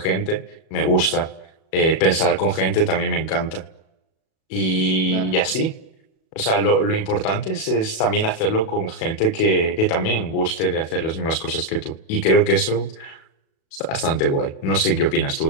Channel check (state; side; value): late; right; 37 ms